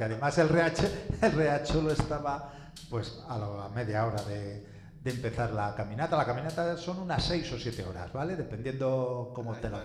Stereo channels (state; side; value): identical; both; correlation 1.00